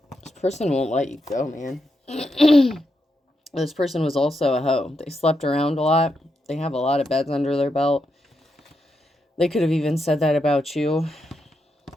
This person won't let you go, man. This person was also a hoe. They slept around a lot. They have a lot of beds under their belt. They could have even said that about you.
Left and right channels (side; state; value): both; normal; correlation 0.83